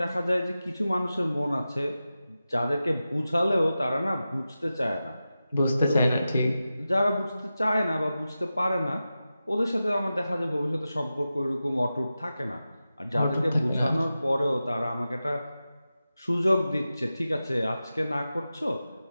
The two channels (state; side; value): inverted; both; correlation -0.93